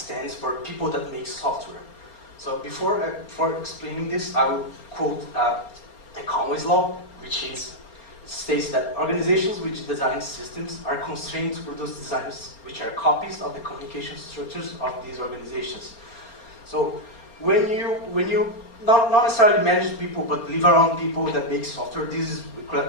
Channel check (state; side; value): late; right; 4.3 ms